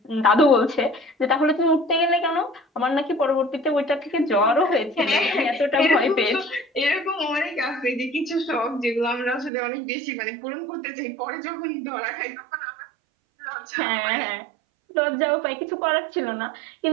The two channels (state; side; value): drops out; left; at 9.5 s